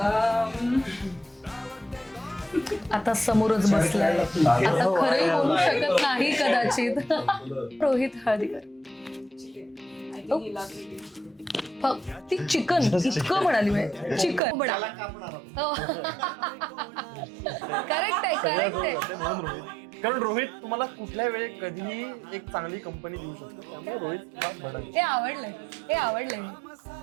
आता समोरच बसलाय, आता खरंही बोलू शकत नाही कदाचित. रोहित हळदीकर. ती चिकन इतकं म्हणाली मी, चिकन करेक्ट आहे करेक्ट आहे. कारण रोहित तुम्हाला कुठल्या वेळी कधीही एक चांगली कंपनी देऊ शकतो, त्यामुळे रोहित हे आवडलंय, हे आवडलंय.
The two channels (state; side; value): drops out; left; at 14.4 s